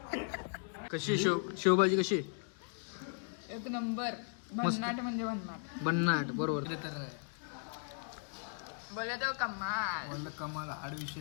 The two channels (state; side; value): silent; right; 53 dB below the other